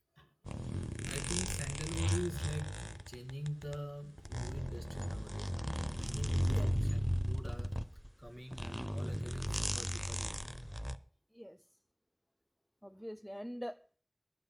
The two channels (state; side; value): identical; both; correlation 1.00